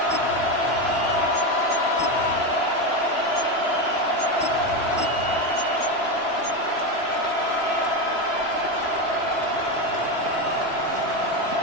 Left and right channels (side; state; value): right; late; 3.0 ms